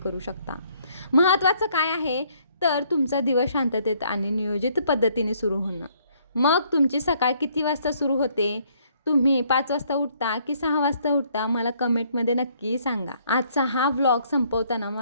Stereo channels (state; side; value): inverted; both; correlation -0.66